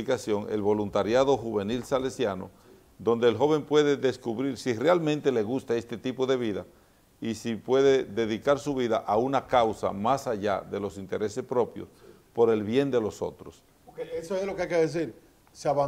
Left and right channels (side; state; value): both; identical; correlation 1.00